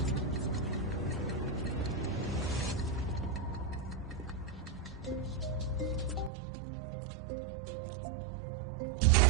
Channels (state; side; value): drops out; left; at 6.3 s